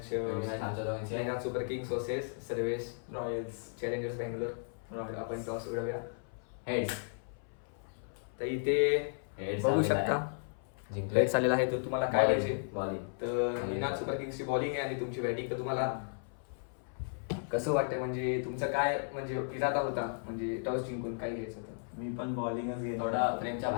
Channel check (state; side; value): silent; right; 55 dB below the other